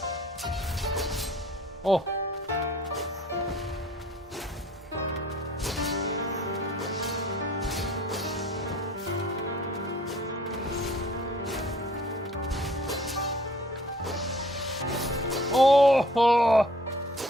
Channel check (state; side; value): normal; both; correlation 0.54